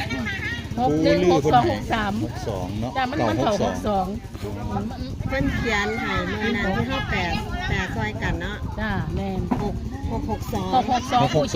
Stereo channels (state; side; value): identical; both; correlation 1.00